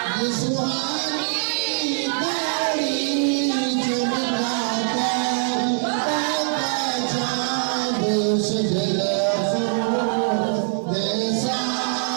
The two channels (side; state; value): left; silent; 61 dB below the other